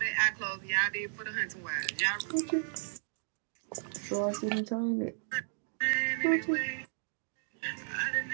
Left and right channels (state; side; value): silent; left; digital silence